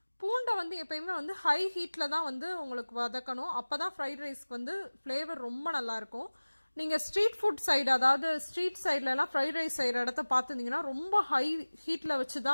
பூண்டை எப்பயுமே ஹை ஹீட்டில் தான் உங்களுக்கு வதக்கணும். அப்போ தான் ஃப்ரைட் ரைஸ்க்கு ஃப்ளேவர் ரொம்ப நல்லாயிருக்கும். நீங்கள் ஸ்ட்ரீட் ஃபுட் சைடு, அதாவது ஸ்ட்ரீட் சைட்லலாம் ஃப்ரைட் ரைஸ் செய்கிற இடத்த பார்த்துருந்தீங்கன்னா ரொம்ப ஹை ஹீட்டில் வச்சு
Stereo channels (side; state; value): both; inverted; correlation -1.00